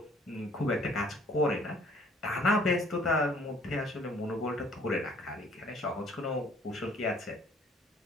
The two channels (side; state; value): both; normal; correlation 0.58